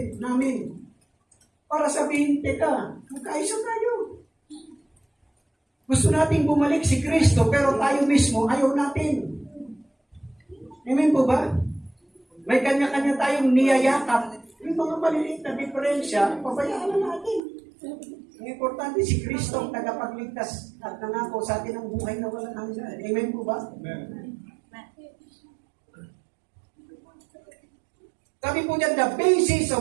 para sabihin, teka, magkaisa tayo. Gusto nating bumalik si Kristo, pero tayo mismo ayaw natin. Amen po ba? May kanya-kanya tayong niyayakap. Yung mga maliliit na diferensya, pabayaan na natin. Ang importante si Kristo ang tagapagligtas at nangako sa atin ang buhay na walang hanggan. Amen po ba? Amen. Sabi po niya, the basis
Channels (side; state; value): left; drops out; at 17.4 s